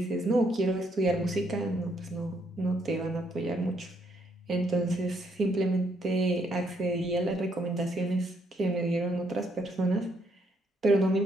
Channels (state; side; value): normal; both; correlation 0.73